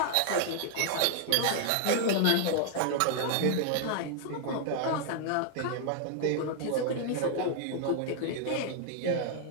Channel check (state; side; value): different; both; correlation 0.00